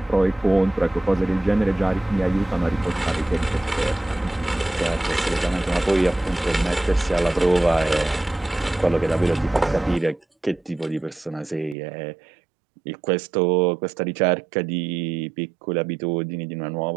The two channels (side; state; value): left; drops out; at 11.8 s